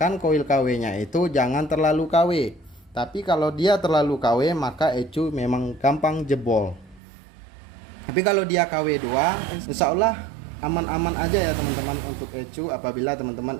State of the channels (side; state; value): left; drops out; at 7.0 s